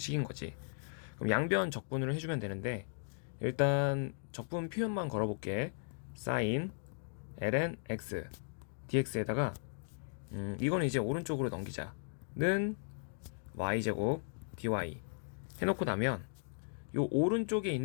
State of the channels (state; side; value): silent; right; digital silence